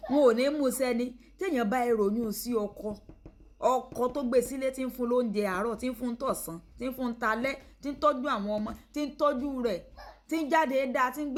wọn ò ní mú sẹ́ni tí èèyàn bá ìròyìn sí ọkọ tó gbé sílé tí ń fún lóúnjẹ àárọ̀ tí ń fún tọ̀sán tí ń fún talẹ́ tí ń tọ́jú àwọn ọmọ tí ń tọ́jú rẹ̀ tí ń jáde dáa tí ń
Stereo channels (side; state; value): both; identical; correlation 1.00